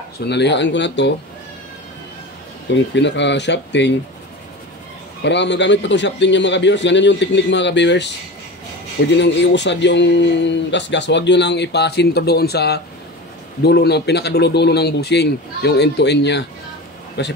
so nalihaan ko na to. Itong pinaka shafting. Para magamit pa itong shafting niya mga viewers. Ganyan yung technique mga viewers. Pwede nang iusad yung gas. Huwag nyo lang ipasinto doon sa dulo ng pinakadulo-dulo ng bushing. Yung end to end niya.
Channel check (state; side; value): normal; both; correlation 0.30